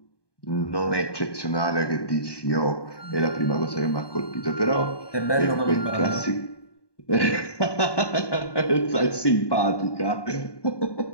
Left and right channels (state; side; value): late; right; 1.2 ms